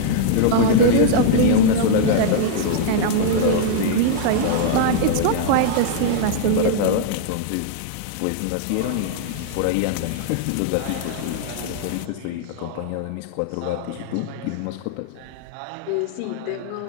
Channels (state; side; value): different; both; correlation -0.01